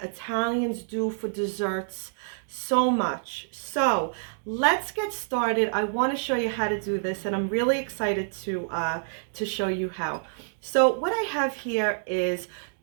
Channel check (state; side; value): silent; left; digital silence